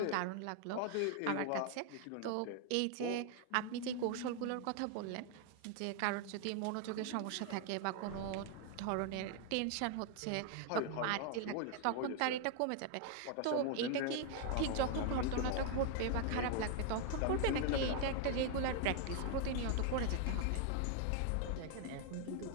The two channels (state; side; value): different; both; correlation 0.00